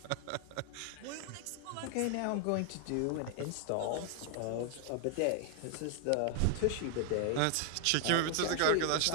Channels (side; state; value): both; different; correlation 0.00